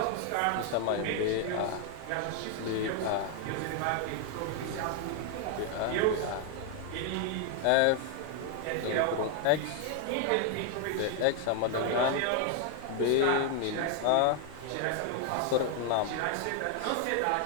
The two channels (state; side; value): different; both; correlation 0.00